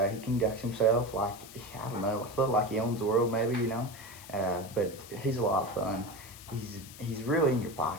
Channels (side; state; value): left; noise; hiss, 17 dB below the sound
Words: He conducts himself like, I don't know, I feel like he owns the world maybe, you know. But he's a lot of fun. He's really in your